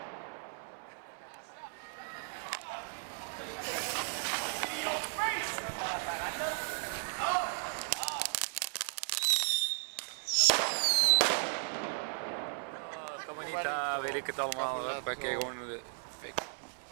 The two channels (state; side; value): silent; left; 54 dB below the other